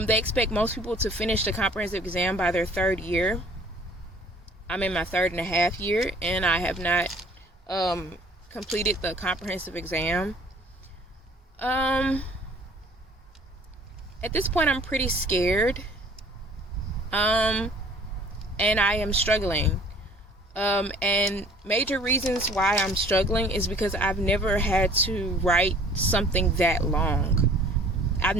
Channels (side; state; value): both; normal; correlation 0.53